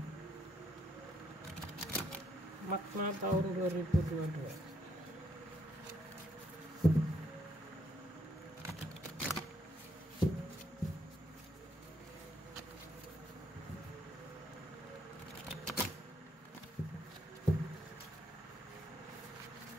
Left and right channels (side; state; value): both; normal; correlation 0.73